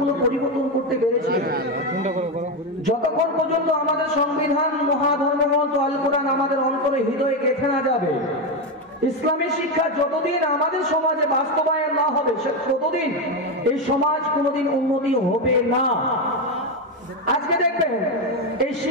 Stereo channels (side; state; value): both; normal; correlation 0.10